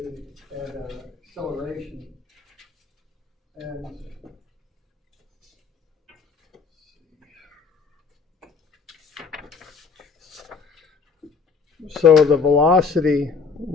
and acceleration. And so the velocity,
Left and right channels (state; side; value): quieter; right; 5.3 dB